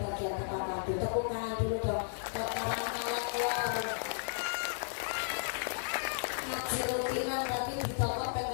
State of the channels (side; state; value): right; silent; digital silence